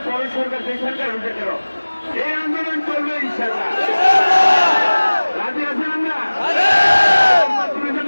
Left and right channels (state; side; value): inverted; both; correlation -1.00